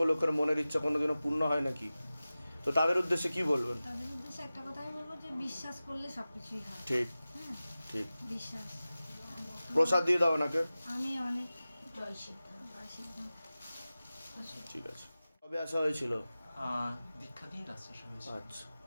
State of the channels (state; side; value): inverted; both; correlation -0.96